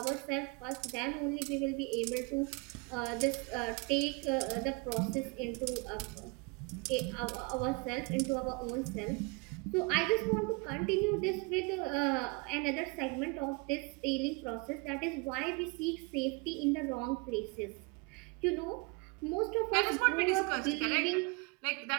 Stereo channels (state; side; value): quieter; left; 29.4 dB